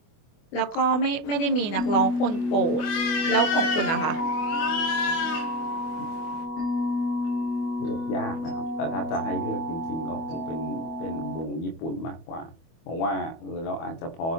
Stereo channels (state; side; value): late; right; 25 ms